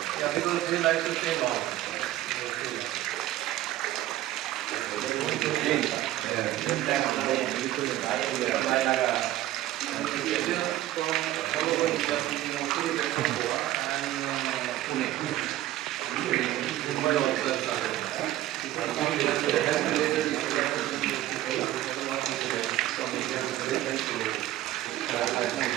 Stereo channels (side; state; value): left; quieter; 14.4 dB